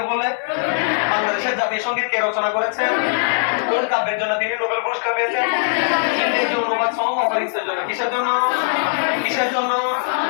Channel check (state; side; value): silent; right; 66 dB below the other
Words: বলে? বাংলাদেশের জাতীয় সঙ্গীত কে রচনা করেছেন? কোন কাব্যের জন্য তিনি নোবেল পুরস্কার পেয়েছেন? ইংরেজি অনুবাদ সহ অপরিচিতের জন্য। কিসের জন্য? কিসের জন্য?